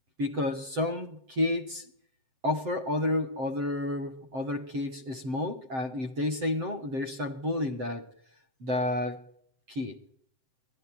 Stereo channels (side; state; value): left; late; 7.7 ms